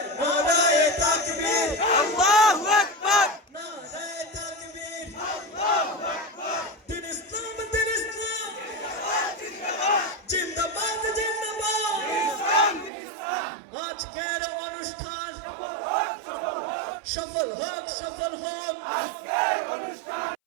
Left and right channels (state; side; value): drops out; left; at 12.9 s